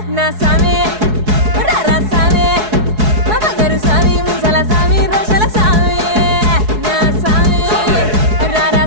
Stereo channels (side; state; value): left; late; 4.7 ms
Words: నా సామే రారా సామే మా బంగారు సామి ముసల సామి రోషల సామి నా సామి రారా